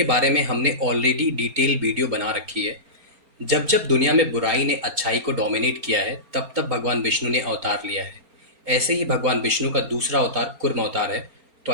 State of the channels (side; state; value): left; late; 4.3 ms